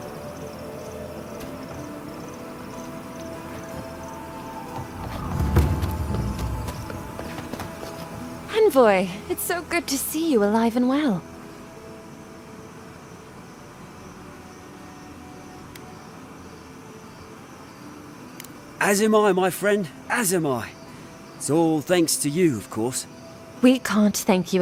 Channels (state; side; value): identical; both; correlation 1.00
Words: Envoy, it's so good to see you alive and well. As am I, my friend. As am I. It's all thanks to you, of course. We can't thank you